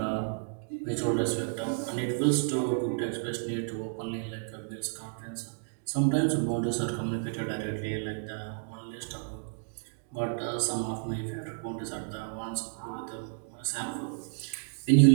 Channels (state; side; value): silent; left; digital silence